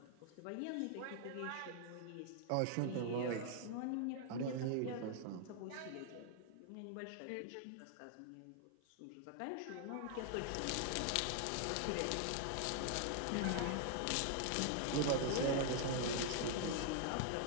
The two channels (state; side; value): different; both; correlation 0.00